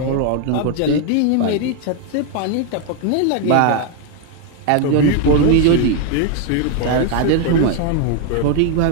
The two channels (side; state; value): both; different; correlation 0.01